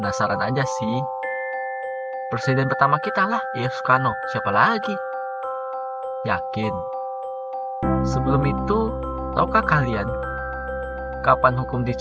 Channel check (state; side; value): identical; both; correlation 1.00